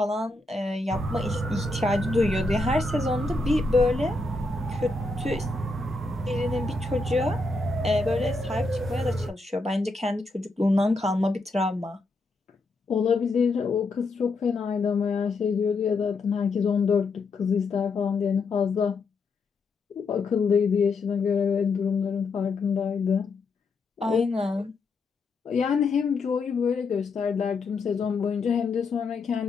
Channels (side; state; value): right; quieter; 3.4 dB